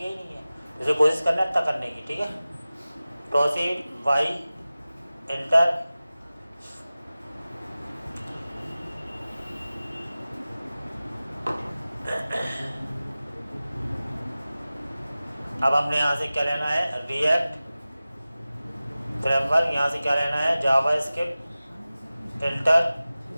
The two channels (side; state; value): both; inverted; correlation -0.97